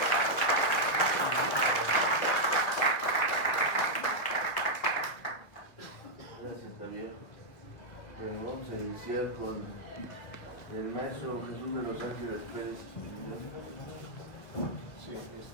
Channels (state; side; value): late; right; 1.9 ms